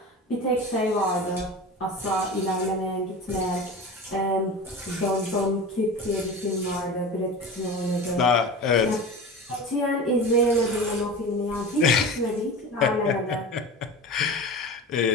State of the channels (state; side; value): normal; both; correlation 0.31